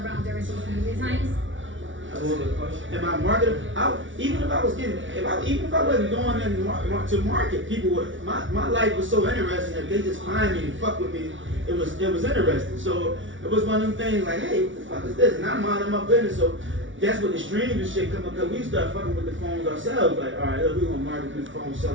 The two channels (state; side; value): late; left; 0.56 ms